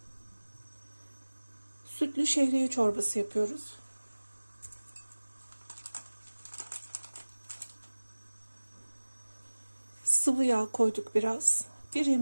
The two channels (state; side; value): inverted; both; correlation -1.00